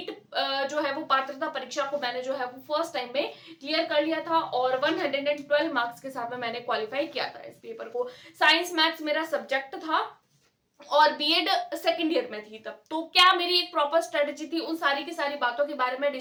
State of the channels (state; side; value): identical; both; correlation 1.00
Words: जो है वो पात्रता परीक्षा को मैंने जो है वो फर्स्ट टाइम में क्लियर कर लिया था, और 112 मार्क्स के साथ में मैंने क्वालिफाई किया था इस पेपर को। साइंस मैथ्स मेरा सब्जेक्ट था, और बीएड सेकंड ईयर में थी तब। तो क्या मेरी एक प्रॉपर स्ट्रेटेजी थी, उन सारी की सारी बातों के बारे में